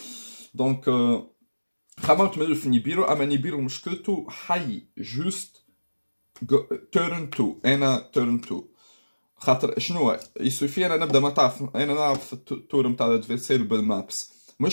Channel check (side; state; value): both; inverted; correlation -1.00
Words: دونك خممت من في نيبيرو، اما نيبيرو مشكلته حي جوست تيرن 2 انا تيرن 2 خاطر شنو يسوفي انا نبدا ما تعرف انا نلعب في التور نتاع الادفيرسير بالمابس.